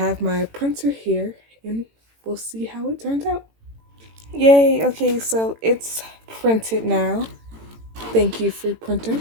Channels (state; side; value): late; left; 18 ms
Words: my printer here, and we'll see how it turns out. Yay! Okay, so it's printed now. Thank you, free printer,